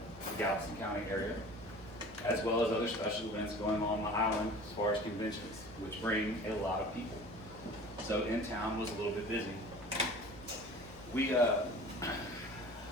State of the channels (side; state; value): both; normal; correlation 0.42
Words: the Galveston County area, as well as other special events going on the island as far as conventions, which bring a lot of people. So in town was a little bit busy.